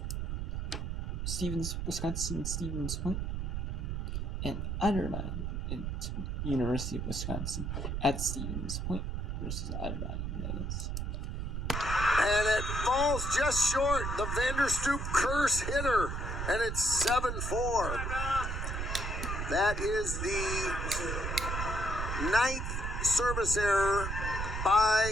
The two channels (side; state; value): right; noise; rumble, 2 dB below the sound